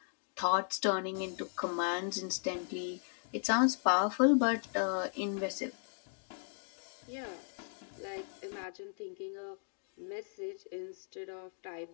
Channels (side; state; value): right; silent; 53 dB below the other